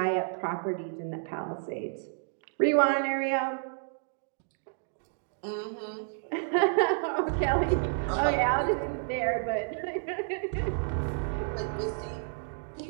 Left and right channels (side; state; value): left; silent; digital silence